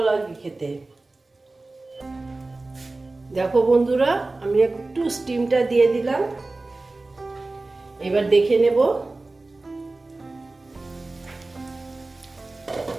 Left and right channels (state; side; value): quieter; left; 3.2 dB